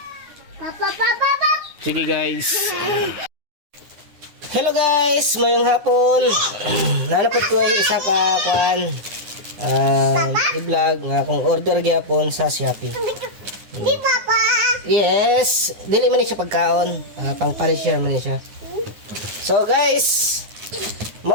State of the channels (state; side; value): late; left; 9.6 ms